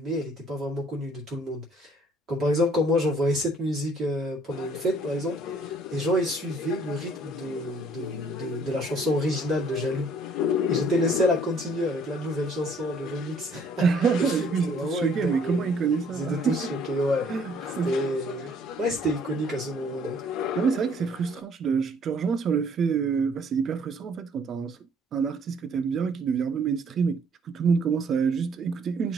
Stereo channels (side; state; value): both; normal; correlation 0.60